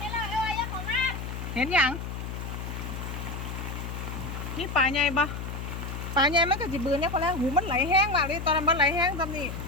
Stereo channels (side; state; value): left; noise; hum, 6 dB below the sound